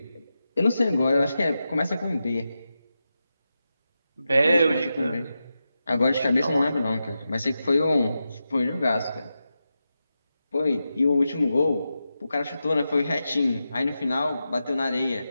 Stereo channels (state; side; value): inverted; both; correlation -0.90